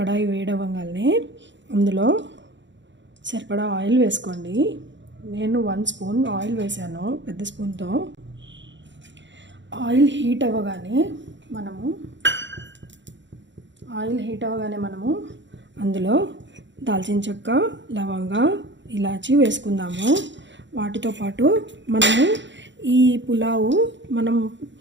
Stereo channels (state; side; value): late; left; 0.53 ms